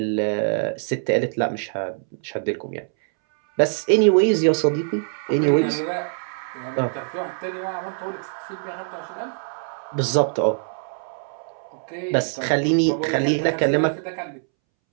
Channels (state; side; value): silent; left; 63 dB below the other